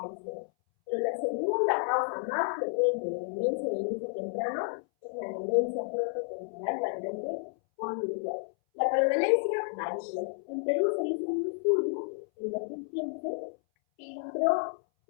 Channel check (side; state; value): right; silent; 57 dB below the other